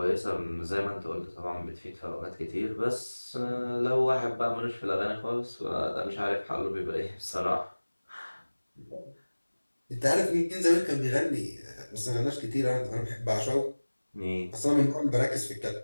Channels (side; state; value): both; inverted; correlation -1.00